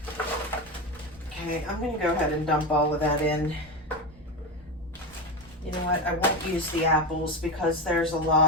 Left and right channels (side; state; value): both; normal; correlation 0.18